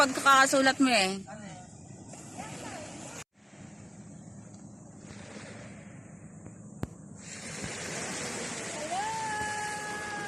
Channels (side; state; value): both; identical; correlation 1.00